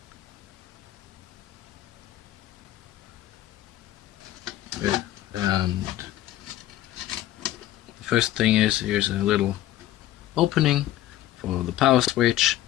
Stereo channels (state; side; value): quieter; right; 14.0 dB